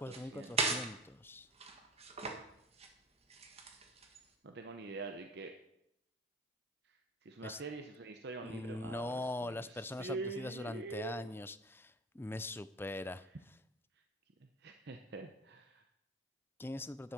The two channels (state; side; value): normal; both; correlation 0.36